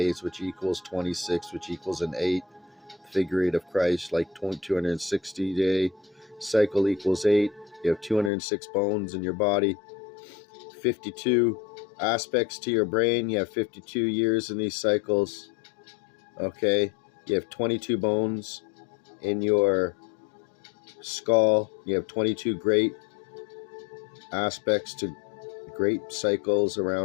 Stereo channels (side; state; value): right; drops out; at 8.3 s